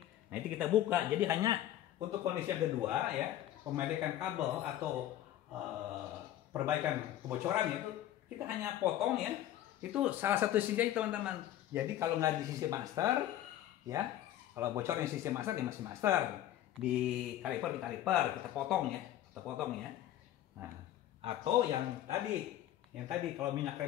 nah itu kita buka. Jadi hanya untuk kondisi yang kedua ya, pemedekan kabel atau perbaikan kebocoran itu kita hanya potong ya. Itu salah satu sisi aja teman-teman. Jadi kalau nggak di sisi master ya, kalau bocor di sisi master ya masih master. Di kaliper kita potong ya, Nah, atau yang tadi kalau minyak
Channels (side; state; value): right; quieter; 12.6 dB